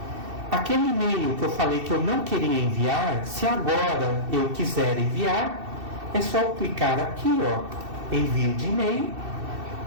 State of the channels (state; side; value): late; left; 2.7 ms